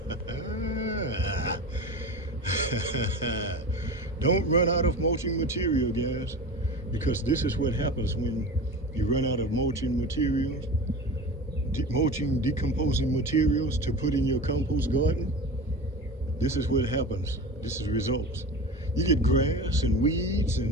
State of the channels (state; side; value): normal; both; correlation 0.31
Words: Don't run out of mulching material, guys, because this is what happens when you run out of mulching materials, decomposing materials to put in your compost garden. This is what happens. This is results. You get grass and weeds